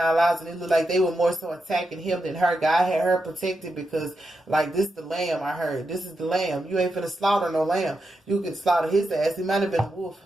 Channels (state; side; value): normal; both; correlation 0.86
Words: lives, and it looked like they were more so attacking him than her. God had her protected because, like, this the lamb, I heard. This is the lamb. You ain't finna slaughter no lamb. You could slaughter his ass. He might have been a wolf.